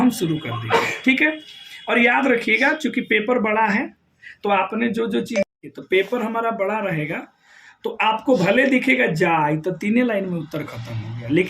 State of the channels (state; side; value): identical; both; correlation 1.00